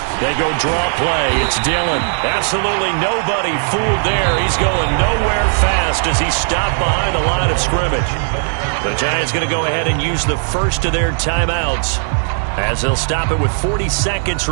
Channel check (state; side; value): silent; left; 58 dB below the other